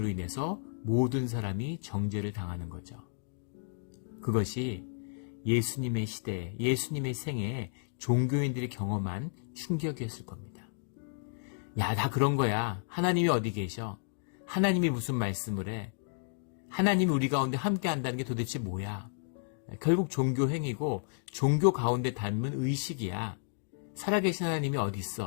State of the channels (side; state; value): right; silent; digital silence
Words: 인해서 모든 사람이 정죄를 당하는 거죠. 그것이 예수님의 시대에, 예수님의 생애에 종교인들이 경험한 충격이었을 겁니다. 야, 다 그런 거야. 하나님이 어디 계셔? 하나님이 무슨 말씀을 해? 하나님이 우리 가운데 함께 한다는 게 도대체 뭐야? 결국 종교 행위고 종교 가운데 담은 의식이야. 살아계신 하나님이 어디